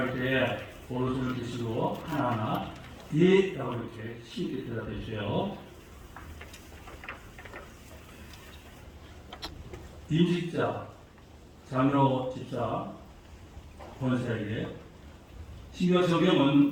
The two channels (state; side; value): identical; both; correlation 1.00